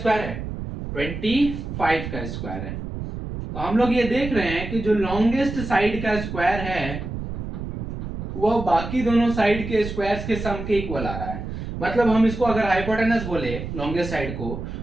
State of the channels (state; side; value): noise; right; rumble, 7 dB below the sound